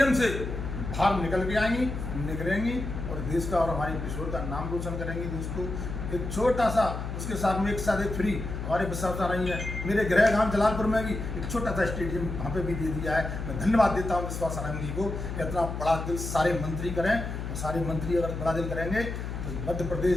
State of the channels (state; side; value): noise; left; hum, 5 dB below the sound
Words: से बाहर निकल के आएंगी, निकलेंगी और देश का और हमारे पिछोर का नाम रोशन करेंगी दोस्तों। एक छोटा सा, उसके साथ में एक साथ एक फ्री हमारे विश्वास आ रही है। मेरे गृह गांव जलालपुर में भी एक छोटा सा स्टेडियम वहाँ पे भी दे दिया है। मैं धन्यवाद देता हूँ विश्वास सारंग जी को। इतना बड़ा दिल सारे मंत्री करें, और सारे मंत्री अगर बड़ा दिल करेंगे तो मध्य